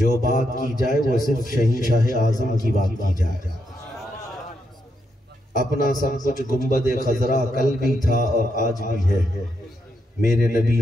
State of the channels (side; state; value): both; normal; correlation 0.80